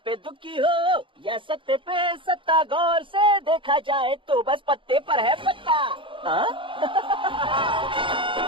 दुखी हो या सत्ते पे सत्ता, गौर से देखा जाए तो बस पत्ते पर है पत्ता।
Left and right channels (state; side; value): late; left; 0.25 ms